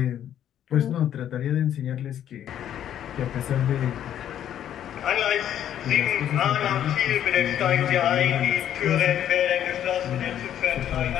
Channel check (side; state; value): right; quieter; 10.5 dB